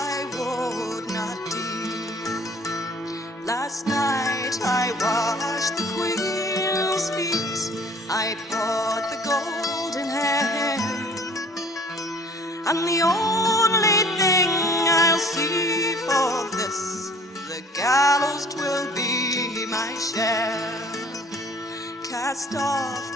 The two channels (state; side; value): normal; both; correlation 0.52